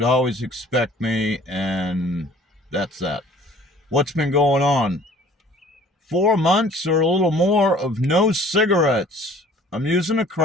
always expect me, and that's that. What's been going on? 4 months or a little more of no cigarettes. I'm using a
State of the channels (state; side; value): normal; both; correlation 0.51